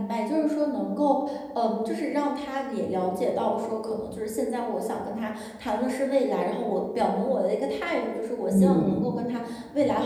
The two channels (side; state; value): both; identical; correlation 1.00